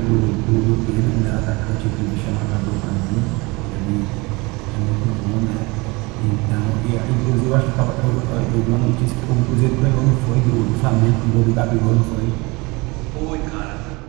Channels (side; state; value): left; quieter; 25.1 dB